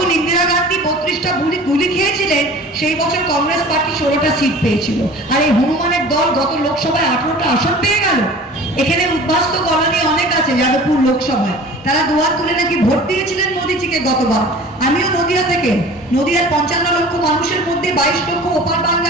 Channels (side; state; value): both; normal; correlation 0.42